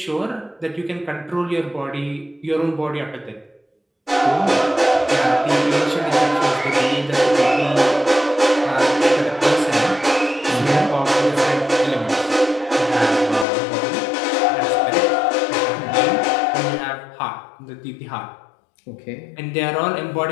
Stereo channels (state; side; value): drops out; right; at 13.5 s